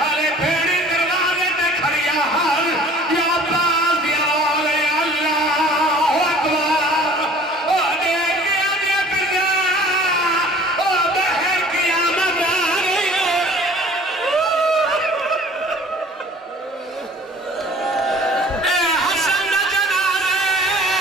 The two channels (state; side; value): normal; both; correlation 0.49